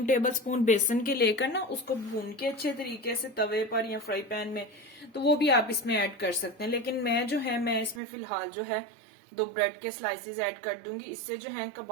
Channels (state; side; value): drops out; left; at 8.0 s